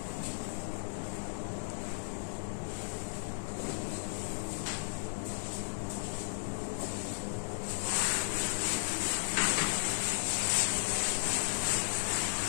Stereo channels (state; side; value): silent; right; digital silence